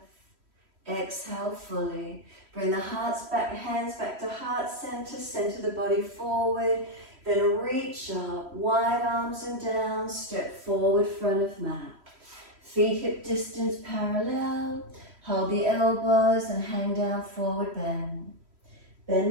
Exhale fully. Bring the hands back to heart center, center the body forward. Then reach up, wide arms and down, step forward, front of mat. Feet hip distance parallel. Hold the elbows and hang down, forward bend. Bend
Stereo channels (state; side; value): late; left; 3.1 ms